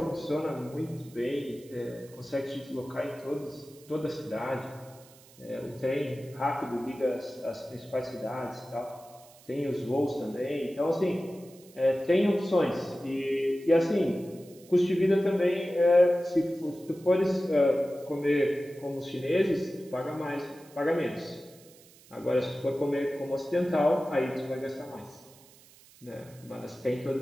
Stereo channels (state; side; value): noise; right; hiss, 24 dB below the sound